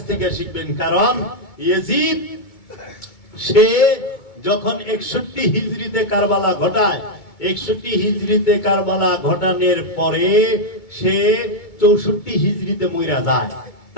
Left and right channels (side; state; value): right; late; 2.2 ms